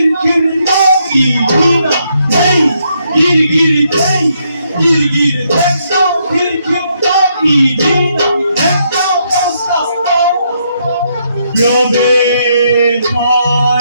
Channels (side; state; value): both; inverted; correlation -0.75